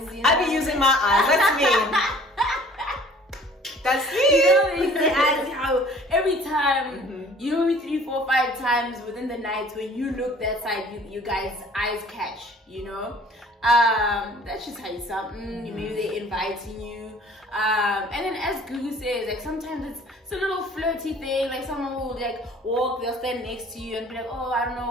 You know? I be using my eyes, that's me. That's me. You know, they use their eyes, how every time, you know, 3, 4, 5 times within the night when you look that side, you guys' eyes catch, you know. That should tell you something. Maybe they're inviting you. And then as Gugu says, like sometimes it's a little flirty thing. Like someone will like walk, they'll stand next to you and be like, oh, I don't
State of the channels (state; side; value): normal; both; correlation 0.52